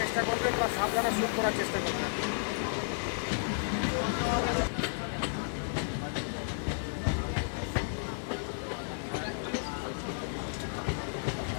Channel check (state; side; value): silent; right; digital silence